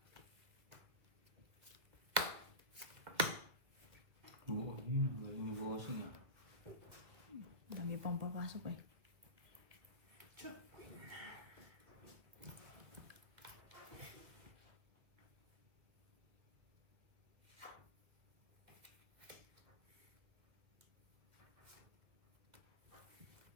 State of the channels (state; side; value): late; left; 2.4 ms